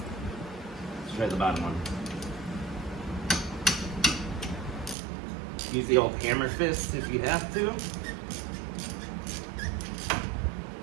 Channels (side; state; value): left; drops out; at 5.0 s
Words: Let's try the bottom one. Use the old hammer fist if you have to.